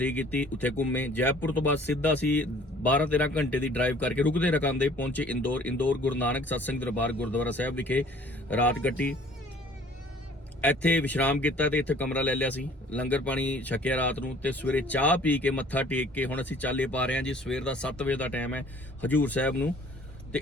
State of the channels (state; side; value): normal; both; correlation 0.53